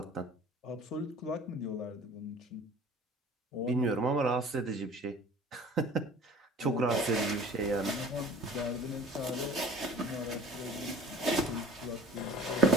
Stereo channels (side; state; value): both; normal; correlation 0.46